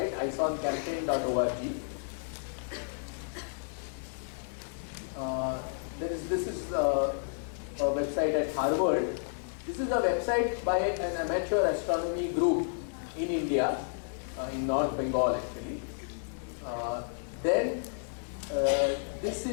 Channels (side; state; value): right; silent; 57 dB below the other